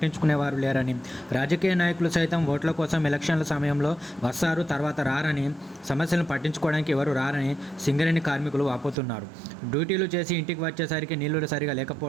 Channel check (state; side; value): drops out; left; at 9.0 s